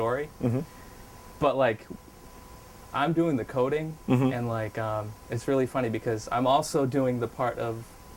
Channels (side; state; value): both; identical; correlation 1.00